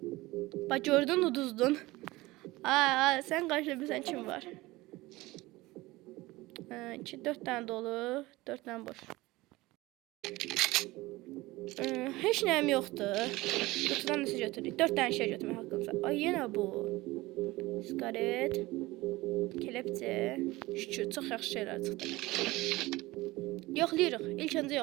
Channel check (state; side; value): quieter; left; 19.9 dB